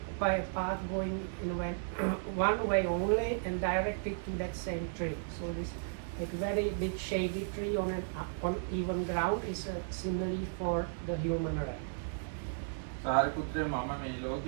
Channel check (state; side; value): silent; left; digital silence